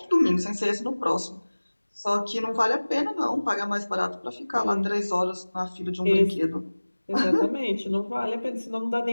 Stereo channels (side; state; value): both; inverted; correlation -1.00